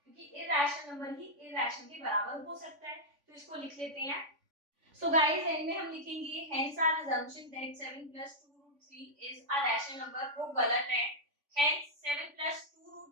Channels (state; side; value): late; left; 3.5 ms